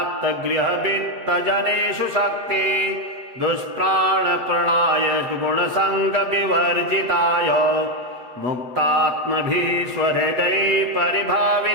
शक्ति दुष्प्राणप्रणाय गुणसङ्गविवर्जिताय मुक्तात्मभिः स्वहृदये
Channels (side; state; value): left; late; 8.0 ms